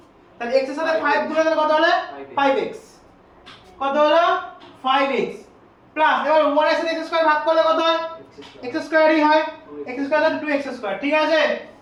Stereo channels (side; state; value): both; identical; correlation 1.00